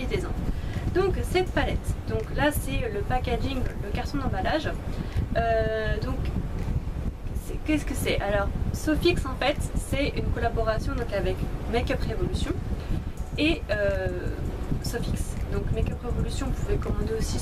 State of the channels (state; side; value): identical; both; correlation 1.00